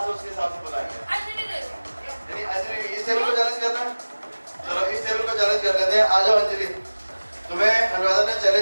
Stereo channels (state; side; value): inverted; both; correlation -1.00